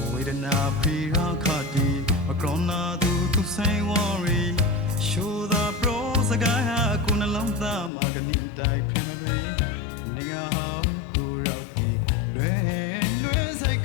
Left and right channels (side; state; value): right; drops out; at 7.9 s